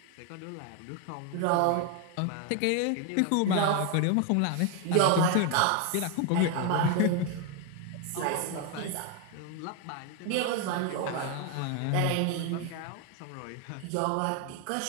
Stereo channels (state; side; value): different; both; correlation 0.01